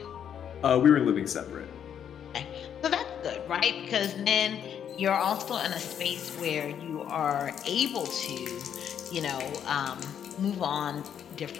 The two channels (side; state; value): right; quieter; 8.8 dB